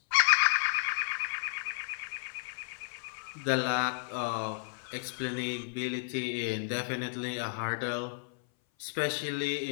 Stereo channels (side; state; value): right; silent; 56 dB below the other